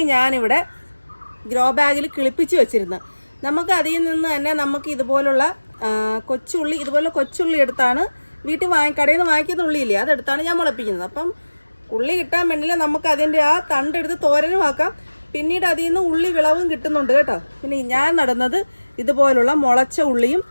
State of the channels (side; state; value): both; inverted; correlation -1.00